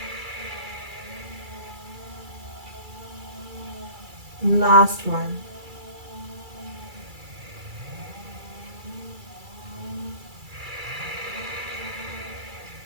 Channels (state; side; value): late; left; 2.3 ms